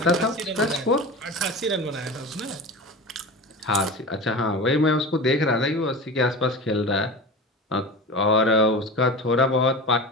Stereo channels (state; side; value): normal; both; correlation 0.31